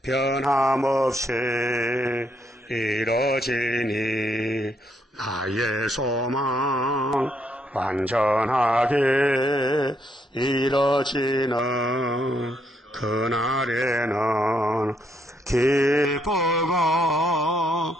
변함없이 이뤄지니 나의 소망 완전하게 이뤄지는 그날에는 기쁘고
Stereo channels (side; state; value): both; normal; correlation 0.74